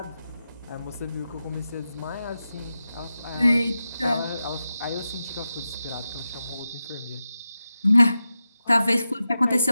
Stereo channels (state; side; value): inverted; both; correlation -0.91